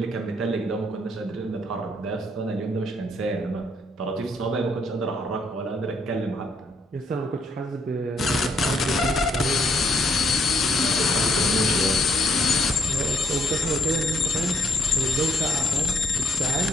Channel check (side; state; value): both; normal; correlation 0.69